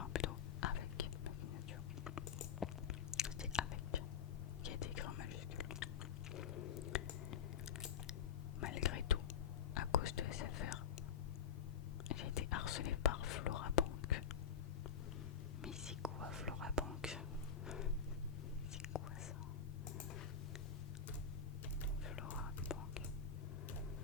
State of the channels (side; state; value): right; quieter; 6.9 dB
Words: plutôt avec ma signature. C'est avec qui a été écrit en majuscule. Malgré tout, à cause de SFR, j'ai été harcelée par Florabank. Mais c'est quoi Florabank? C'est quoi ça? Florabank.